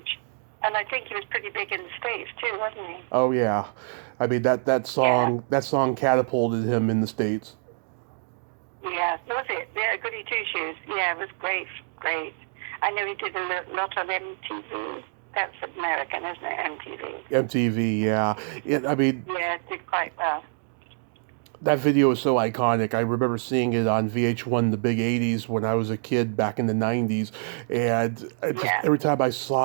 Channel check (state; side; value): silent; left; digital silence